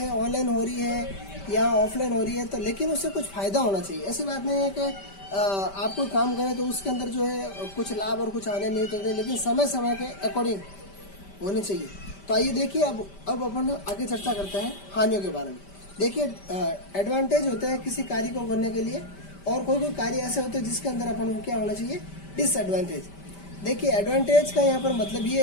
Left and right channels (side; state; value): right; late; 5.1 ms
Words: ऑनलाइन हो रही है या ऑफलाइन हो रही है, तो लेकिन उससे कुछ फ़ायदा होना चाहिए। ऐसी बात नहीं है कि आप कोई काम करें तो उसके अंदर जो है कुछ लाभ और कुछ हानि नहीं होते, लेकिन समय समय के अकॉर्डिंग होने चाहिए। तो आइए देखिए, अब अपन आगे चर्चा करते हैं हानियों के बारे में। देखिए, एडवांटेज होते हैं किसी कार्य को करने के लिए, और कोई कोई कार्य ऐसे होते हैं जिसके अंदर अपन को क्या होना चाहिए, डिसएडवांटेज। देखिए, एडवांटेज का यहाँ पर मतलब